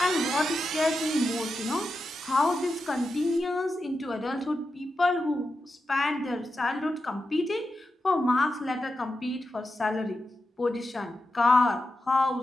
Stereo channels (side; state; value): both; normal; correlation 0.89